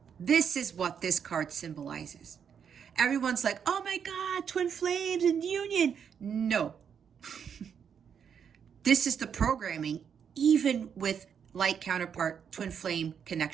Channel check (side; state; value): left; quieter; 7.5 dB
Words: This is what this card symbolizes. Everyone's like, oh my God, twin flames and union. No. This is the programming, even with light counterpart twin flame